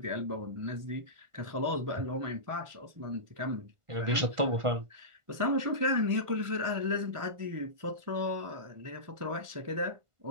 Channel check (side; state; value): left; late; 1.5 ms